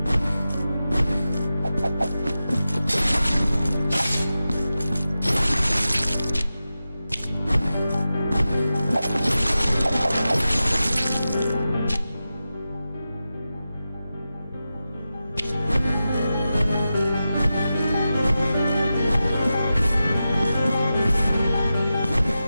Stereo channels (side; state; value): both; inverted; correlation -0.93